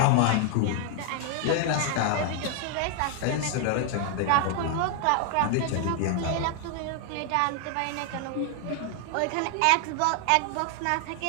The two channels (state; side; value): different; both; correlation 0.00